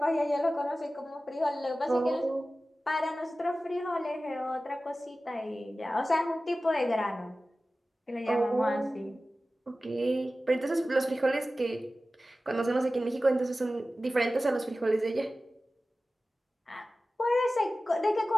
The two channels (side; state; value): both; normal; correlation 0.95